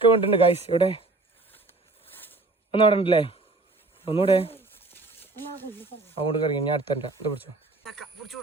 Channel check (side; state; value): left; quieter; 3.3 dB